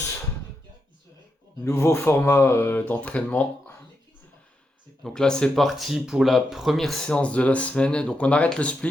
Nouveau format d'entraînement. Donc là, c'est parti pour la première séance de la semaine. Donc on arrête le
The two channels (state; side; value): normal; both; correlation 0.85